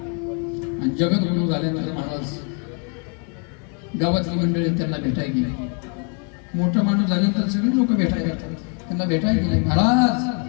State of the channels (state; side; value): quieter; right; 37.3 dB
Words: आणि जगद्गुरु झाल्यानंतर महाराज गावातली मंडळी त्यांना भेटायला गेली. मोठा माणूस झाल्यानंतर सगळे लोक भेटायला येतात. त्यांना भेटायला गेले.